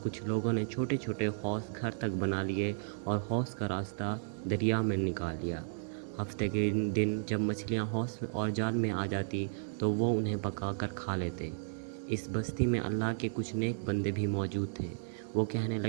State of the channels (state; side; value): silent; left; digital silence